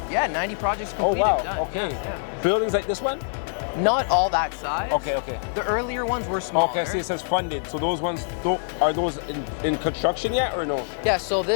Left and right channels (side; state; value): right; silent; digital silence